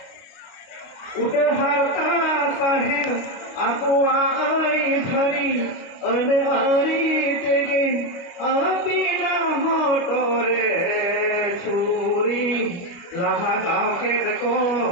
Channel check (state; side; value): late; right; 29 ms